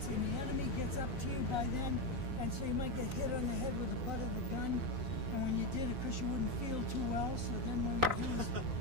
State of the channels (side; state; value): left; late; 3.9 ms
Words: and the enemy gets up to you by then, and so you might get hit on the head with the butt of the gun. And when you did it, because you wouldn't feel too well, so then what they do is